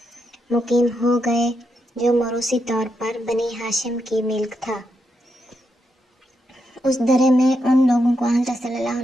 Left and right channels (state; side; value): normal; both; correlation 0.83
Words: مقیم ہو گئے جو موروثی طور پر بنی ہاشم کی ملک تھا۔ اس درے میں ان لوگوں کو حضرت صلی اللہ